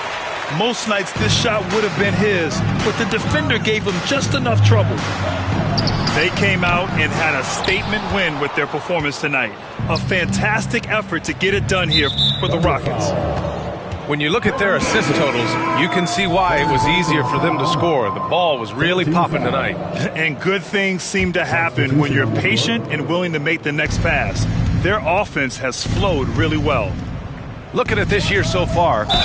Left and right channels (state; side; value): identical; both; correlation 1.00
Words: Most nights this shot would have been his, but the defender gave him just enough trouble. They came out and had a statement win with their performance tonight. A fantastic effort to get it done here for the Rockets. When you look at their assist totals, you can see why it was easier for them to score. The ball was really popping tonight. And good things seem to happen when you're patient and willing to make the next pass. Their offense has flowed really well. Looking at this year so far,